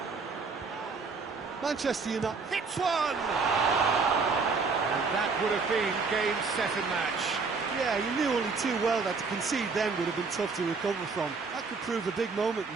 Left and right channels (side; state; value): left; quieter; 4.6 dB